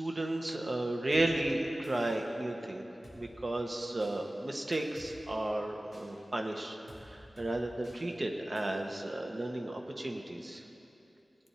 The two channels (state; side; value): normal; both; correlation 0.97